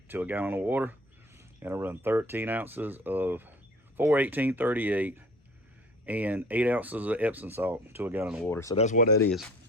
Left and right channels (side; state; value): both; normal; correlation 0.48